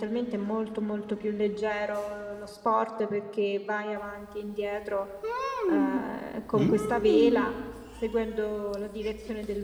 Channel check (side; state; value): both; identical; correlation 1.00